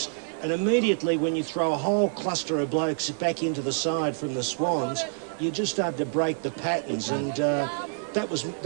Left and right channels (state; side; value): silent; left; 60 dB below the other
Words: and immediately when you throw a whole cluster of blokes back into the side from the Swans, you just start to break the patterns, and that was